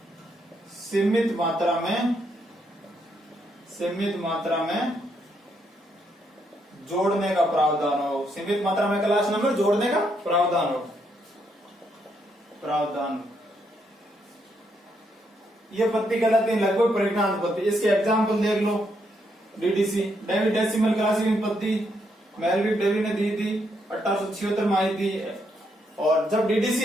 सीमित मात्रा में जोड़ने का प्रावधान हो। सीमित मात्रा में क्लास नंबर जोड़ने का प्रावधान हो। ये पद्धति कहलाती है लगभग परिगणनात्मक पद्धति। इसके एग्जाम्पल देख लो। डीडीसी डेसिमल क्लासिफिकेशन पद्धति मेलविक डेवी ने दी थी 1876 में आई थी। और जब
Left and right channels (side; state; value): both; normal; correlation 0.76